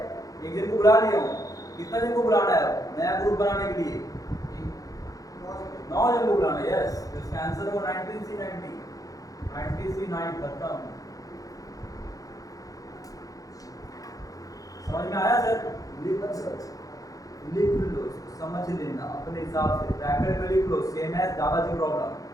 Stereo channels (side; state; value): right; late; 0.17 ms